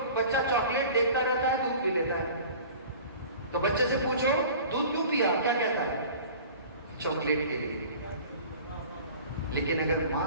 بچہ چاکلیٹ دیکھتا رہتا ہے، دودھ پی لیتا ہے. تو بچے سے پوچھو دودھ کیوں پیا، کیا کہتا ہے؟ چاکلیٹ کے لیے. لیکن اگر ماں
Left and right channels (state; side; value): inverted; both; correlation -0.43